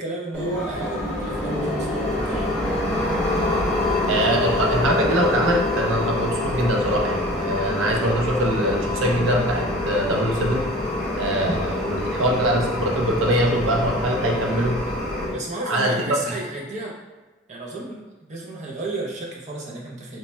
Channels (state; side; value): normal; both; correlation 0.40